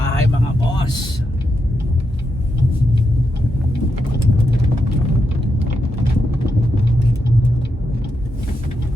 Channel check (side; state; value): both; normal; correlation 0.84